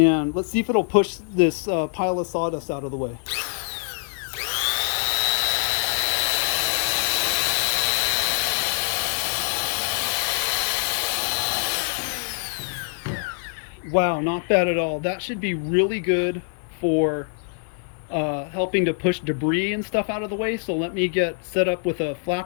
let's see if it'll push this pile of sawdust out of the way. Wow, not bad at all. That should be really good for helping to push debris and stuff out of the way. So let me get set up with a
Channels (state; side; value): silent; right; digital silence